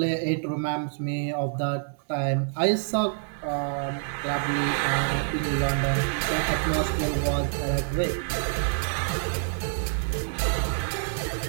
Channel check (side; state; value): left; silent; 60 dB below the other